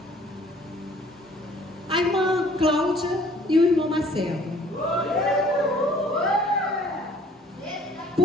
a irmã Cláudia e o irmão Marcelo.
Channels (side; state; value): both; normal; correlation 0.56